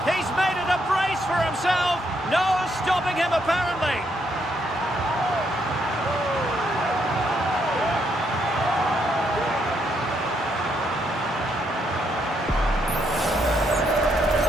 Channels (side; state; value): both; normal; correlation 0.75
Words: He's made it a brace for himself. No stopping him apparently.